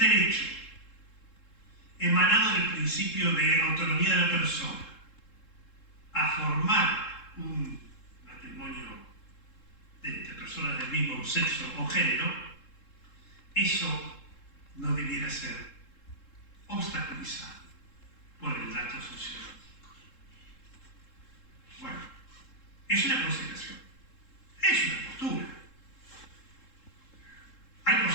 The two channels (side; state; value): right; late; 3.7 ms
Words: emanado del principio de autonomía de la persona a formar un matrimonio entre personas del mismo sexo o género. Eso no debiera ser obstaculizado por el dato sociológico. Bueno, es una consideración, es una postura. Hay